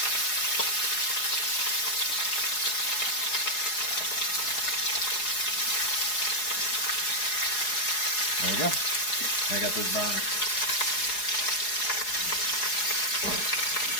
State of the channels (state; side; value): late; right; 4.8 ms